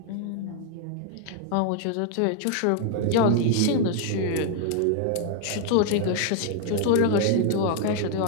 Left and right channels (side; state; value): both; different; correlation 0.00